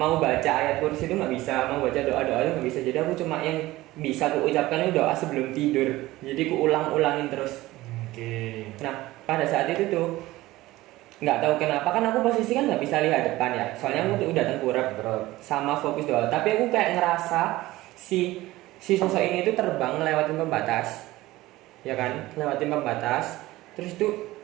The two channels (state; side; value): quieter; left; 17.8 dB